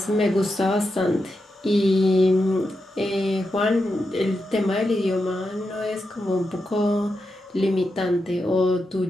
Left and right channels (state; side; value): normal; both; correlation 0.87